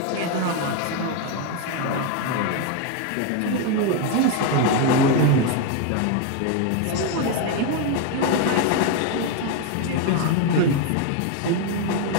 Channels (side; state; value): both; different; correlation 0.01